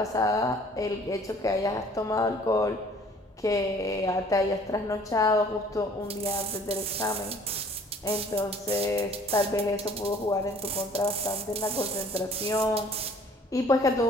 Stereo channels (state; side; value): normal; both; correlation 0.54